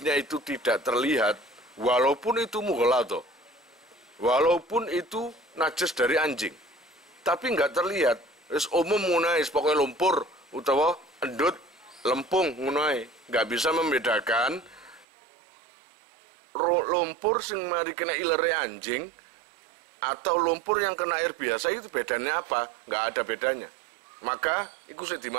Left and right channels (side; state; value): left; drops out; at 15.1 s